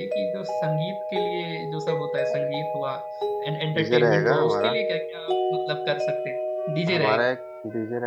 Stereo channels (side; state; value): both; identical; correlation 1.00